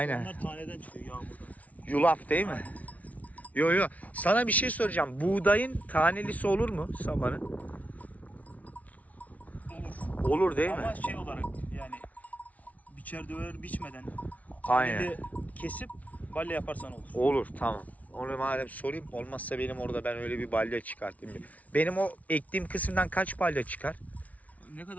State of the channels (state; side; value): late; right; 0.070 ms